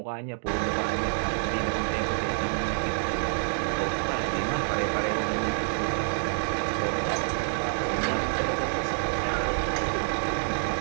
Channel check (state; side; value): silent; left; digital silence